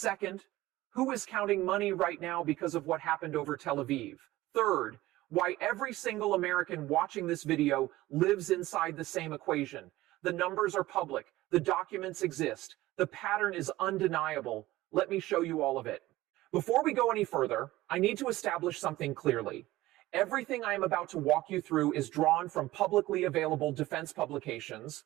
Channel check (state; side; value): quieter; left; 17.2 dB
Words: who is counting money right now because of what happened over Tel Aviv? Third, why every single American watching this video lives inside the same equation. The numbers are public. The documents exist. The pattern is undeniable. Let me show you all of it. Before we go any further, I need to establish something clearly. Everything I am about to walk you through is drawn from publicly available defense publications,